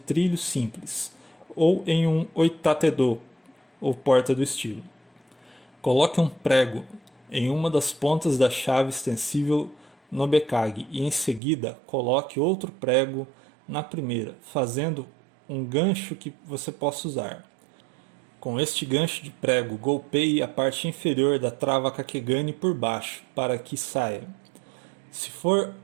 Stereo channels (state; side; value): drops out; left; at 11.4 s